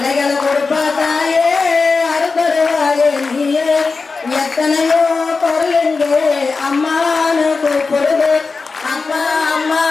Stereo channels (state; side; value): quieter; right; 4.3 dB